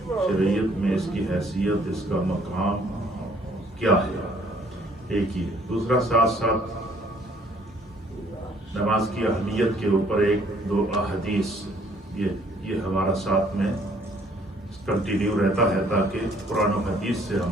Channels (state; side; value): normal; both; correlation 0.61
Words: شریعت میں اس کی حیثیت، اس کا مقام کیا ہے۔ ایک ہی ہے۔ دوسرا، ساتھ ساتھ نماز کی اہمیت کے اوپر ایک دو احادیث یہ ہمارا ساتھ میں کنٹینیو رہتا ہے، تاکہ قرآن و حدیث سے